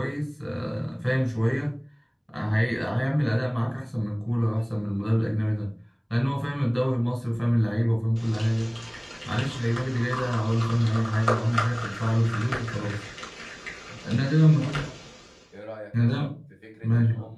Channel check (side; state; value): both; identical; correlation 1.00